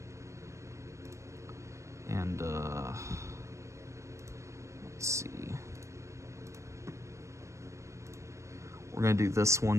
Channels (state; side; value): late; left; 0.14 ms